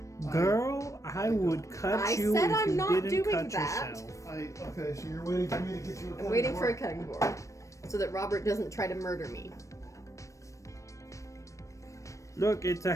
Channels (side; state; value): right; late; 0.15 ms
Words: Girl, I would cut I you said if I'm you not didn't doing cut that. yourself. Okay, so you're waiting for me to get you a cutting I'm waiting for a board? cutting board so that Robert doesn't try to murder me. Look, it's a